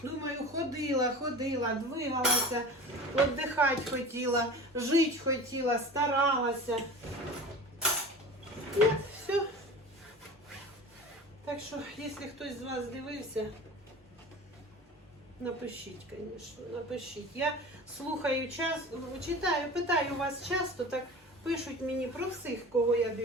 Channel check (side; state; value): both; normal; correlation 0.36